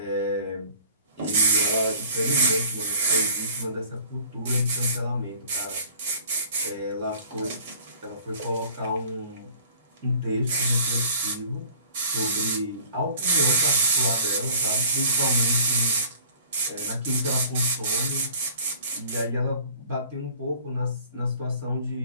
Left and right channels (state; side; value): inverted; both; correlation -0.46